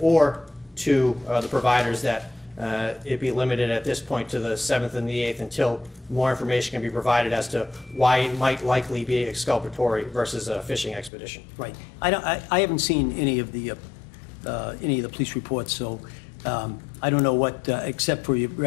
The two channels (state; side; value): drops out; right; at 11.1 s